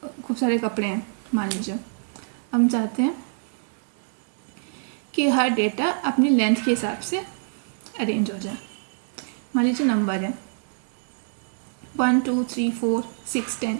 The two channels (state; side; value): silent; left; digital silence